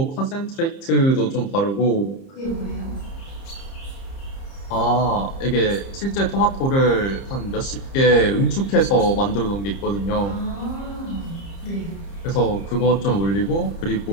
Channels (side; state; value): right; late; 30 ms